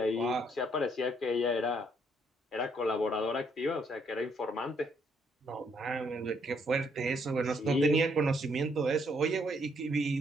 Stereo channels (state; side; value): normal; both; correlation 0.70